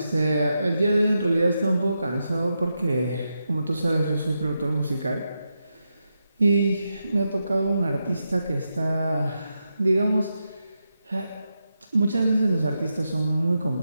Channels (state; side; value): inverted; both; correlation -0.87